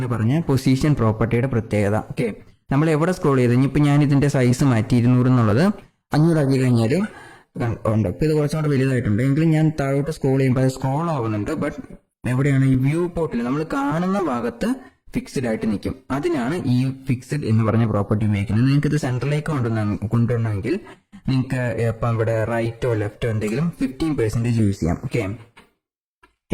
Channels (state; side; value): identical; both; correlation 1.00